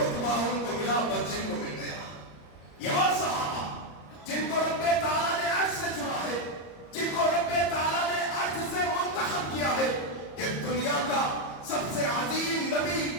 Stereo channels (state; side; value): late; right; 34 ms